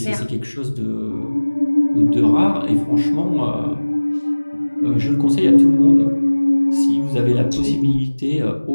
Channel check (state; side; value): inverted; both; correlation -1.00